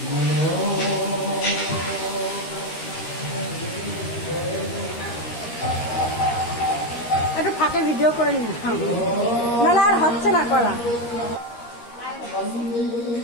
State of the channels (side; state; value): right; late; 13 ms